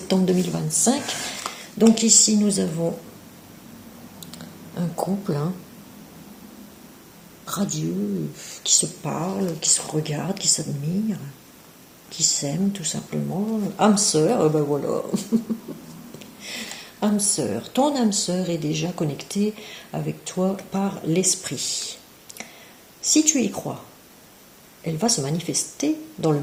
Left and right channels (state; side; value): identical; both; correlation 1.00